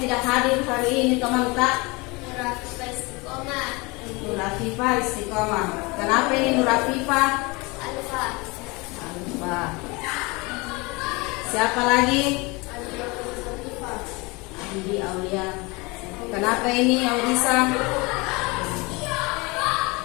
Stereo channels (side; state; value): right; quieter; 26.0 dB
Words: tidak hadir hari ini teman tak? Nur Afifah Istiqomah. Nur Afifah Istiqomah. Kenapa ini Nur Afifah? Alfa. Alfa. Siapa lagi? Andi Aulia. Kenapa ini Audisa?